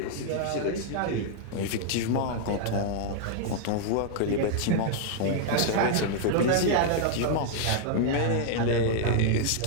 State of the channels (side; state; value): both; different; correlation -0.01